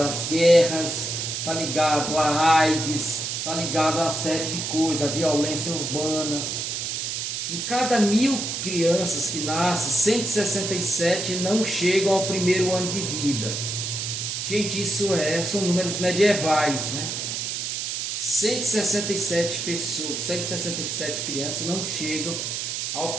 guerras, está ligado à AIDS, está ligado a uma série de coisas, à violência urbana. Em cada 1.000 crianças que nascem, 167 não chegam ao primeiro ano de vida. Gente, são números medievais, né? 167 pessoas, 167 crianças não chegam ao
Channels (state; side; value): noise; right; hiss, 3 dB below the sound